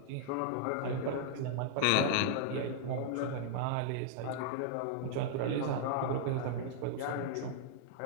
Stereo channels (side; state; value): both; different; correlation -0.01